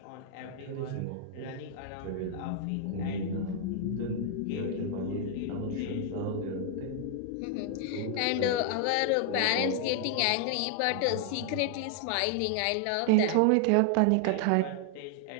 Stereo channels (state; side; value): different; both; correlation 0.00